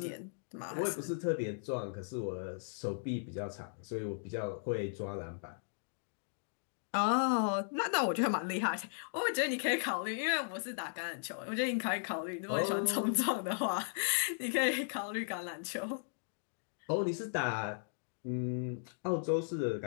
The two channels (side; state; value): right; silent; digital silence